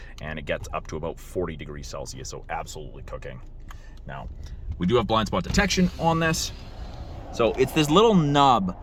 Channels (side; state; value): both; identical; correlation 1.00